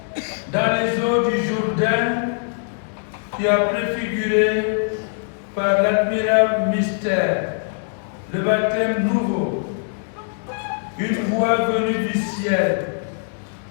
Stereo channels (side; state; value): right; silent; digital silence